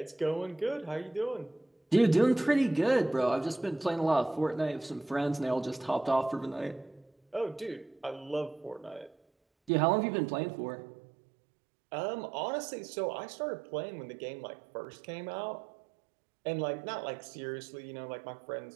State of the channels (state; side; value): drops out; left; at 9.7 s